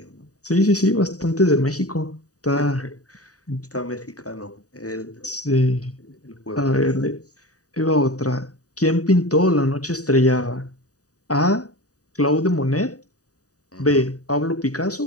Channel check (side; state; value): right; late; 0.66 ms